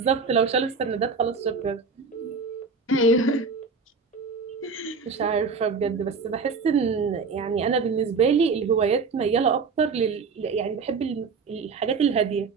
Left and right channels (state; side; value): quieter; left; 4.8 dB